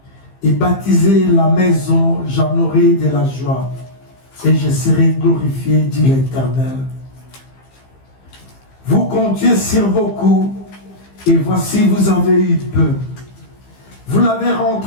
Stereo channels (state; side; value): late; right; 15 ms